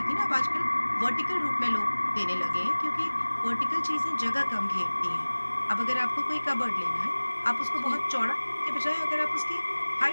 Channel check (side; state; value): both; inverted; correlation -1.00